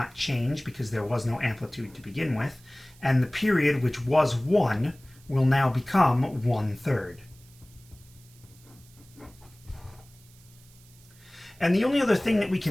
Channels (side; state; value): right; noise; hiss, 26 dB below the sound